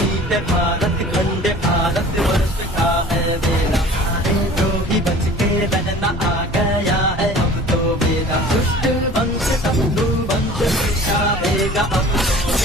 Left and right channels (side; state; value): both; normal; correlation 0.45